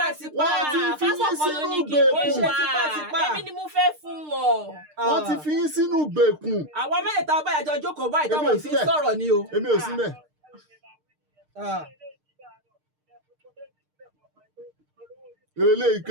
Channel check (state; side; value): late; left; 6.6 ms